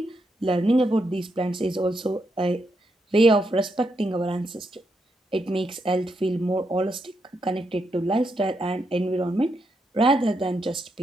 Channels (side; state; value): both; normal; correlation 0.81